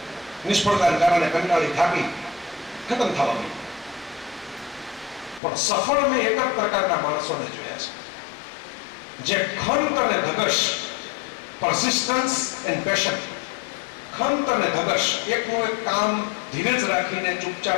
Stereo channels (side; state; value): right; drops out; at 5.4 s